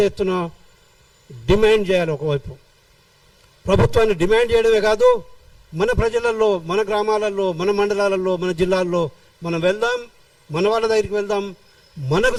ఎత్తున డిమాండ్ చేయాలి. ఒకవైపు ప్రభుత్వాన్ని డిమాండ్ చేయడమే కాదు, మన ప్రజలలో, మన గ్రామాలలో, మన మండలాలలో, మన జిల్లాల్లో మనం వెళ్దాం, మన వాళ్ళ దగ్గరికి వెళ్దాం, మనకు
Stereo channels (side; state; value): both; identical; correlation 1.00